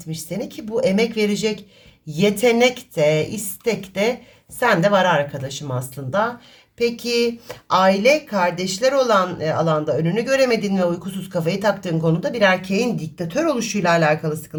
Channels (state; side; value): identical; both; correlation 1.00